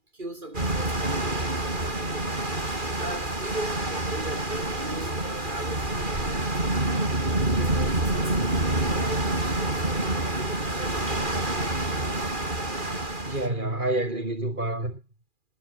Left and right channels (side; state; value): left; late; 2.4 ms